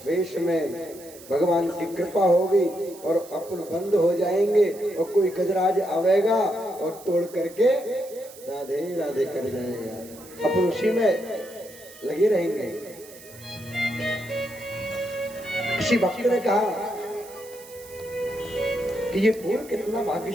वेश में भगवान की कृपा होगी और अपन बंद हो जाएंगे, और कोई गजराज आवेगा और तोड़ करके राधे राधे कर जाएगा। अपन उसी में लगे रहेंगे। किसी भक्त ने कहा कि ये फूल कितना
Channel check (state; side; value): noise; right; hiss, 19 dB below the sound